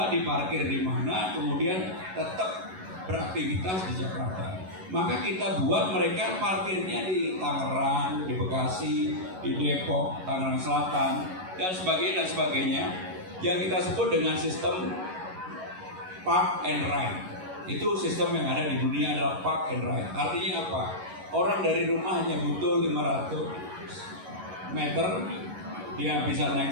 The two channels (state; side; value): late; left; 11 ms